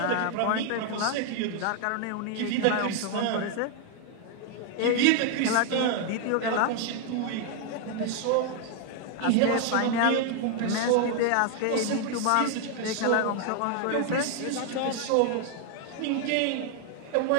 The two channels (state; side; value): different; both; correlation 0.00